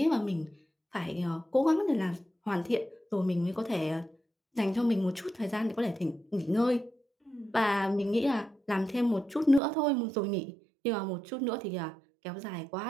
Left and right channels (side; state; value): left; drops out; at 9.6 s